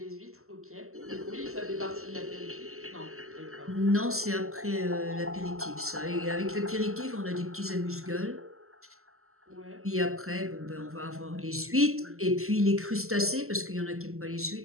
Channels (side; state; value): left; late; 0.63 ms